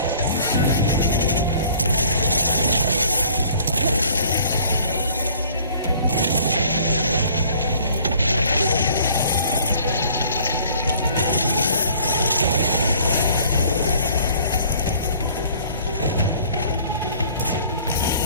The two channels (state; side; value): inverted; both; correlation -0.54